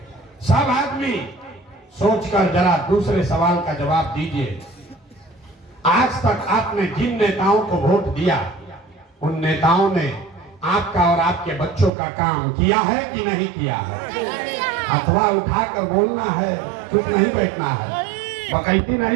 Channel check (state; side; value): drops out; left; at 11.9 s